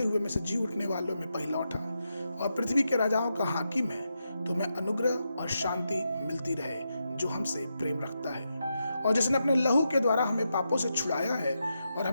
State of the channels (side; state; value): both; inverted; correlation -0.86